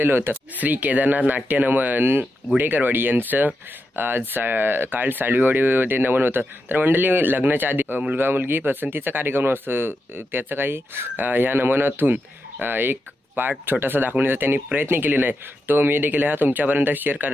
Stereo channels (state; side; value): normal; both; correlation 0.87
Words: होतं. श्री केदारनाथ नाट्य नमन गुडेकरवाडी यांचं आज काल सालवीवाडीमध्ये नमन होतं. तर मंडळी, लग्नाच्या आधी मुलगा मुलगी पसंतीचा कार्यक्रम असतो, त्याचं काही ह्या नमनातून एक पार्ट छोटासा दाखवण्याचा त्यांनी प्रयत्न केलेला आहे. तो मी देखील हा तुमच्यापर्यंत शेअर